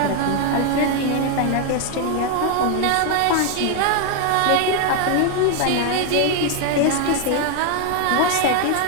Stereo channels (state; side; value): different; both; correlation 0.01